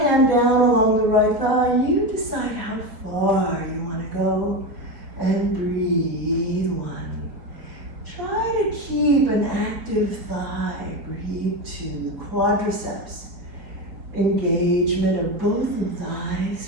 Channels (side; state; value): left; late; 4.6 ms